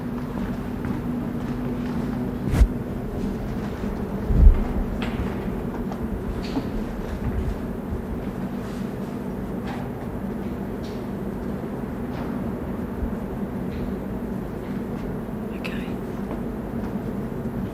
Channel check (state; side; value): identical; both; correlation 1.00